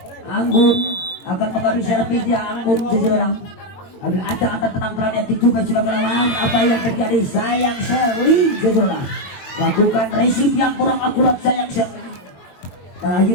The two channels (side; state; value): right; late; 22 ms